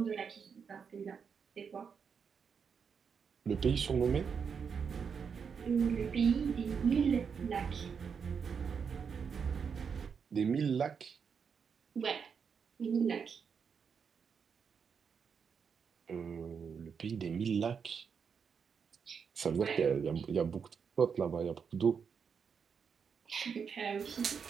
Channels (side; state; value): left; quieter; 6.4 dB